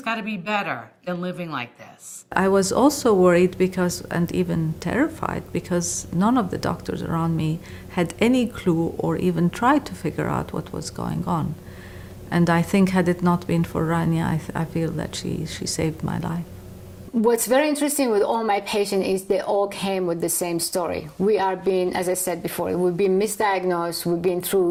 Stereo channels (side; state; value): both; identical; correlation 1.00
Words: got to be better than living like this. I was also worried because, and even terrified, because none of the doctors around me had any clue or even tried to figure out what was going on. And I think had it not been for Rania, I feel that she saved my life. What's very interesting with all my patients is they all came with the same story. We are being, as I said before, we've been misdiagnosed, we've been